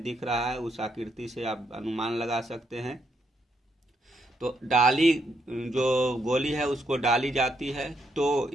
दिख रहा है उस आकृति से आप अनुमान लगा सकते हैं। तो डाली जो गोली है उसको डाली जाती है, तो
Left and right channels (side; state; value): both; normal; correlation 0.77